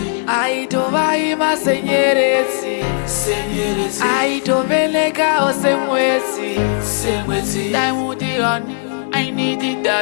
aito vaima senyeredzi, aito velekawo semwedzi. Diamond on, I need it,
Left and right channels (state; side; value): silent; right; digital silence